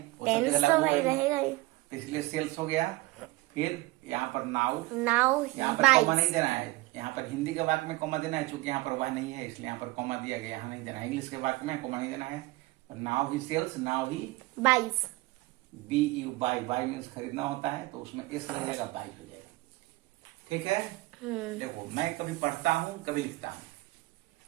सब टेंस जगह तो लागू भाई होगा ही। रहेगा ही। तो इसलिए सेल्स हो गया। फिर यहाँ पर नाउ, नाउ ही यहाँ पर कॉमा नहीं बाइट्स, देना है। यहाँ पर हिंदी के वाक्य में कॉमा देना है, चूंकि यहाँ पर वह नहीं है इसलिए यहाँ पर कॉमा दिया गया, यहाँ नहीं देना है। इंग्लिश के वाक्य में कॉमा नहीं देना है। Now he sells, now he buys. BU, buy. Buy means खरीदना होता है, तो उसमें S लग जाएगा, बाई हो जाएगा। ठीक है, देखो मैं कभी पढ़ता हूँ कभी लिखता हूँ।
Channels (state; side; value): quieter; left; 20.8 dB